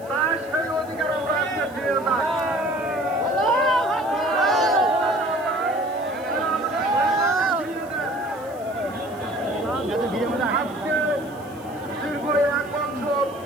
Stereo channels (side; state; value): left; noise; hiss, 24 dB below the sound